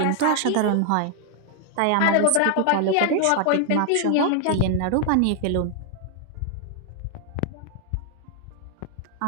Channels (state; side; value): different; both; correlation 0.00